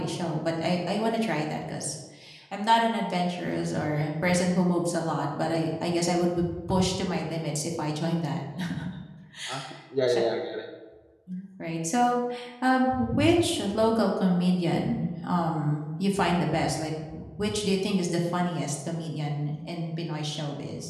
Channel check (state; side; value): identical; both; correlation 1.00